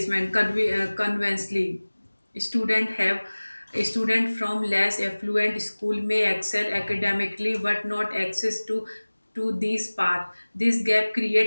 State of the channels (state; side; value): inverted; both; correlation -1.00